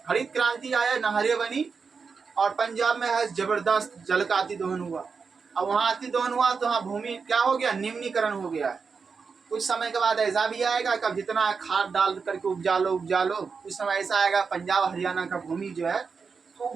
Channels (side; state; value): left; quieter; 5.3 dB